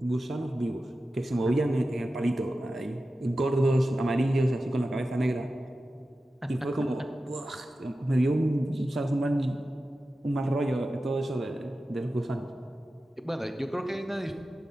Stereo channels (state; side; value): normal; both; correlation 0.93